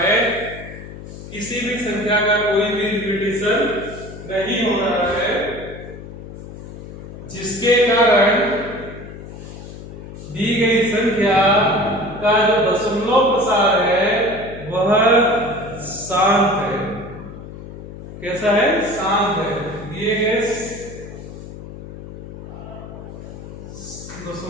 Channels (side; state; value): left; noise; hum, 13 dB below the sound